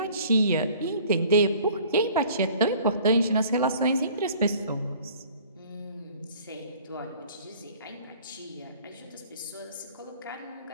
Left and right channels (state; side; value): inverted; both; correlation -0.51